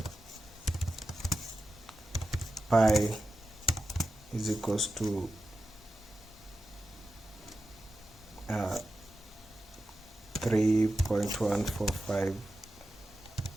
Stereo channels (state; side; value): normal; both; correlation 0.92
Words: Pi is equals to 3.145